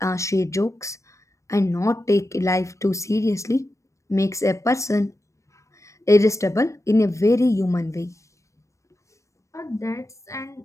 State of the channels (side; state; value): right; late; 0.15 ms